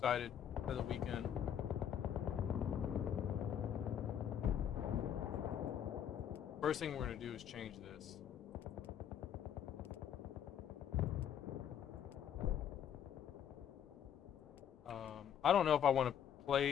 for the weekend. First thing we're gonna do is change this. I don't know if I want to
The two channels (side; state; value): right; quieter; 9.3 dB